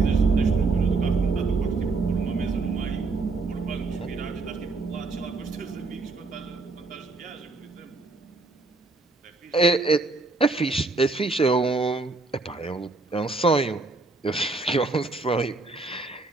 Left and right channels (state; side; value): quieter; left; 3.7 dB